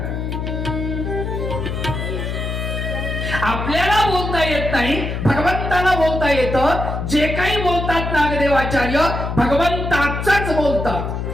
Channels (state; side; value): noise; left; hum, 3 dB below the sound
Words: आपल्याला बोलता येत नाही, भगवंताला बोलता येतं. जे काही बोलतात नागदेवाचार्य भगवंताच बोलतात.